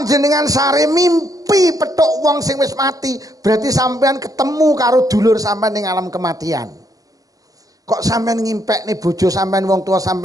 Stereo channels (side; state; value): left; late; 0.17 ms